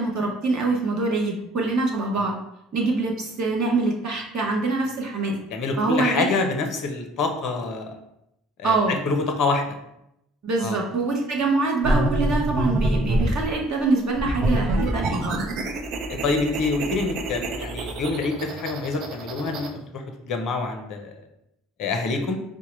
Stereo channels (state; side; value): normal; both; correlation 0.55